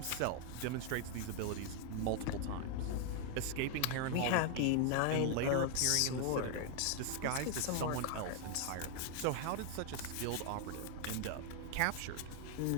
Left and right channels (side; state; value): both; different; correlation 0.00